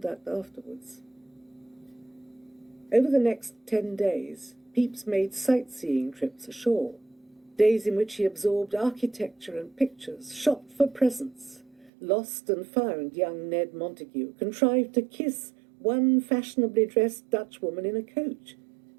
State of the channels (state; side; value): drops out; left; at 11.9 s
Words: afterwards. Over the next 10 days, Pepys made sightseeing trips ashore, days in which he absorbed architecture and pictures, shopped for presents, lost and found young Ned Montagu, contrived to kiss one fashionably dressed Dutch woman in a coach,